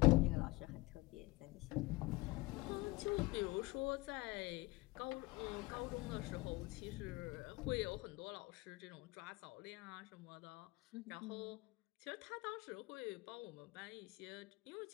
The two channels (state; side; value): quieter; right; 22.1 dB